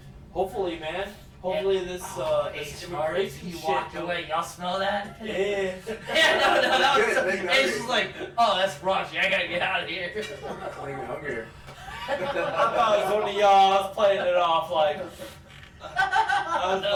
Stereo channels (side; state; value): both; identical; correlation 1.00